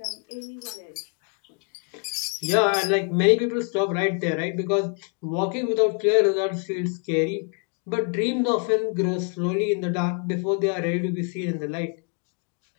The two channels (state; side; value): quieter; right; 38.8 dB